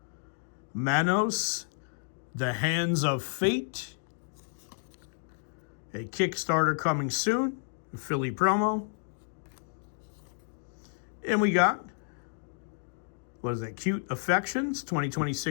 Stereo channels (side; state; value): right; silent; digital silence